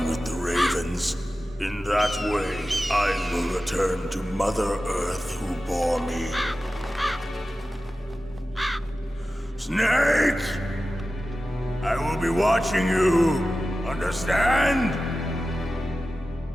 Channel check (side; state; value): both; normal; correlation 0.94